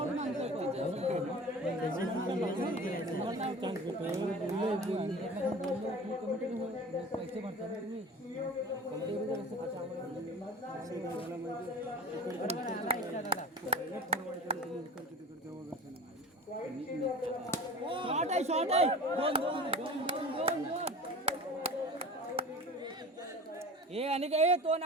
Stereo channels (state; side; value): normal; both; correlation 0.36